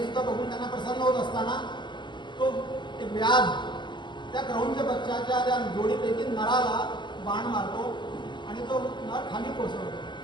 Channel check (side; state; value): right; late; 0.22 ms